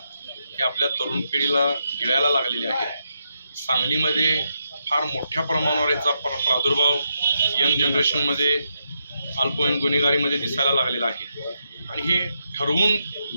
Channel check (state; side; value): inverted; both; correlation -0.82